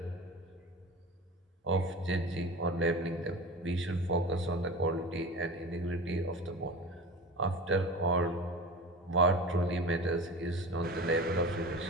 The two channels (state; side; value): normal; both; correlation 0.32